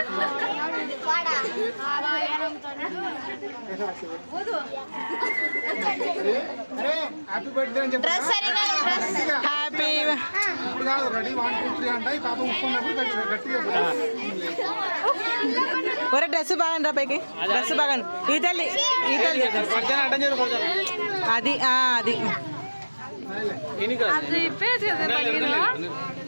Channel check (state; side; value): inverted; both; correlation -1.00